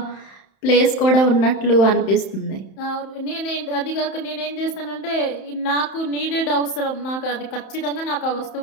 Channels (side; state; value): right; late; 31 ms